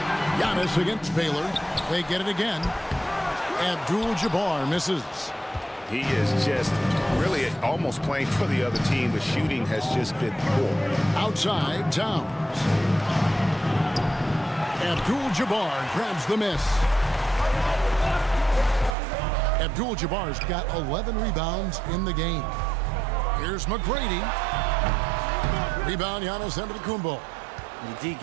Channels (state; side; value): drops out; left; at 18.9 s